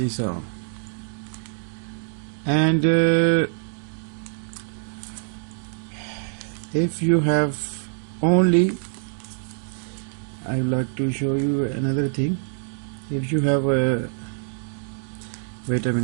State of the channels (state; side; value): silent; left; digital silence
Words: all. And if you have only, I would like to show you another thing. If you have a, wait a